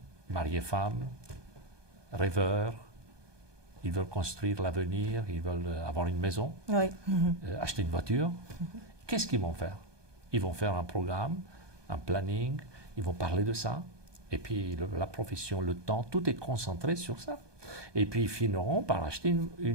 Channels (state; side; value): late; left; 1.2 ms